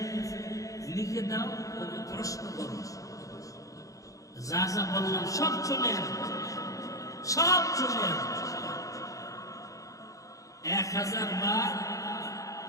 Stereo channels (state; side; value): late; right; 0.16 ms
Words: লিখে দাও, ওকে প্রশ্ন করো, যা যা বললাম সব চলে আসবে, সব চলে আসবে। 1000 বার